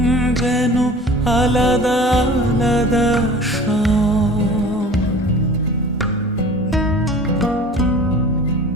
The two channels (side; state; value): both; normal; correlation 0.43